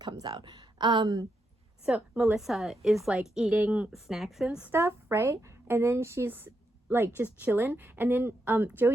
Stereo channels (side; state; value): both; normal; correlation 0.82